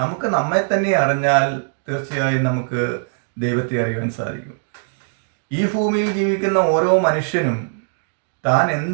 നമുക്ക് നമ്മെ തന്നെ അറിഞ്ഞാൽ തീർച്ചയായും നമുക്ക് ദൈവത്തെ അറിയുവാൻ സാധിക്കും. ഈ ഭൂമിയിൽ ജീവിക്കുന്ന ഓരോ മനുഷ്യനും താൻ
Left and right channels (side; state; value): left; silent; digital silence